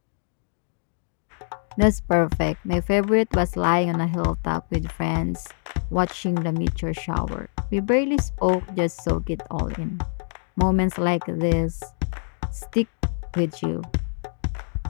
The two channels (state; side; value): silent; right; digital silence